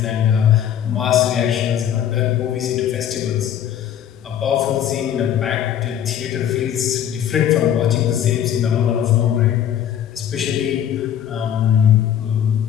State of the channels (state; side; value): quieter; right; 10.0 dB